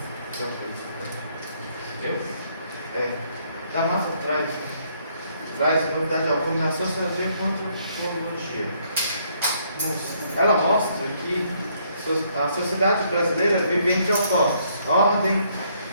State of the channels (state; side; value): inverted; both; correlation -0.69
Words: D'Amato traz novidade alguma na sociologia quanto à antropologia. Ela mostra que a sociedade brasileira vive entre opostos: ordem,